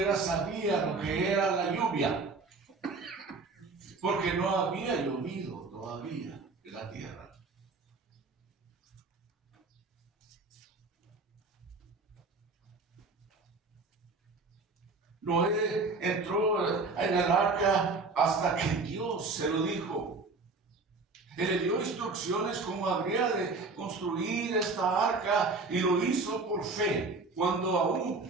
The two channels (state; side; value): quieter; left; 3.8 dB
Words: sabía lo que era la lluvia, porque no había llovido todavía en la tierra. Noé entró en el arca hasta que Dios se lo dijo. Él le dio instrucciones cómo habría de construir esta arca y lo hizo por fe, cuando